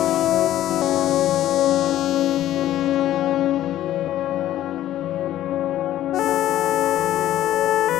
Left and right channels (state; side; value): quieter; right; 13.1 dB